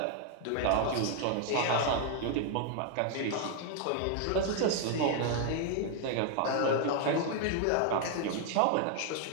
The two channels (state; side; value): different; both; correlation 0.00